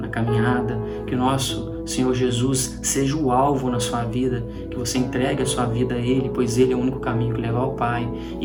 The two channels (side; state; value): both; identical; correlation 1.00